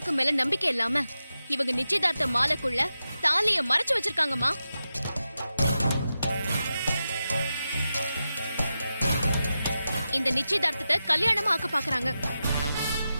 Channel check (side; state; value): both; inverted; correlation -0.91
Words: மேல நம்பிக்கை இல்லாம இவங்க நிச்சயதார்த்த மாலைக்குள்ள தாலிய மறைச்சு வச்சிருக்காங்கம்மா. இந்த நிச்சயதார்த்தத்தை கல்யாணமா ஆக்க பாக்குறாங்க.